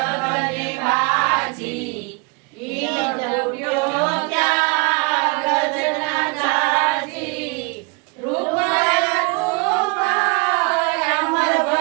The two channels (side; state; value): left; quieter; 30.7 dB